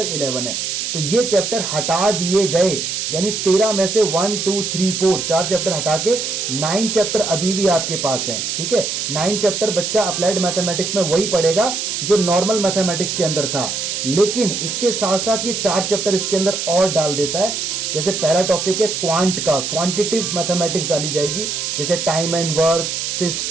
11 है। तो ये चैप्टर हटा दिए गए, यानी 13 में से 1 2 3 4 4 चैप्टर हटा के 9 चैप्टर अभी भी आपके पास हैं, ठीक है। 9 चैप्टर बच्चा अप्लाइड मैथमेटिक्स में वही पढ़ेगा जो नॉर्मल मैथमेटिक्स के अंदर था, लेकिन इसके साथ साथ ये 4 चैप्टर इसके अंदर और डाल देता है। जैसे पहला टॉपिक है क्वांट का, क्वांटिटिव मैथमेटिक्स डाली जाएगी, जैसे time and work,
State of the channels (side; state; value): right; noise; hiss, 3 dB below the sound